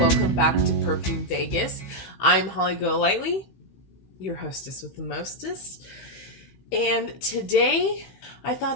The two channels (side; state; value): right; late; 15 ms